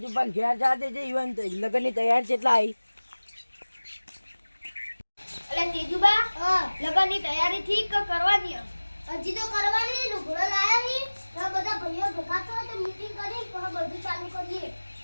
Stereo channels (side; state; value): both; inverted; correlation -1.00